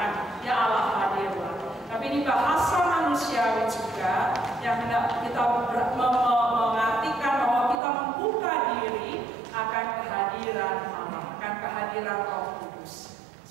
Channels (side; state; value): left; drops out; at 7.8 s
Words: ya Allah hadirlah. Tapi ini bahasa manusiawi juga yang hendak kita mengartikan bahwa kita membuka diri akan kehadiran Allah, akan kehadiran Roh Kudus.